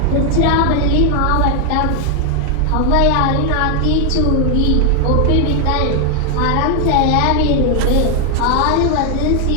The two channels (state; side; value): different; both; correlation 0.00